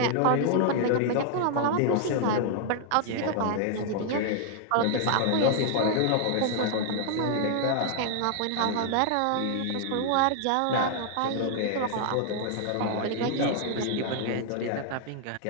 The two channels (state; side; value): different; both; correlation 0.00